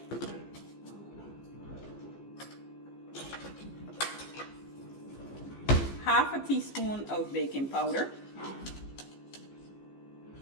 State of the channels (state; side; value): late; right; 15 ms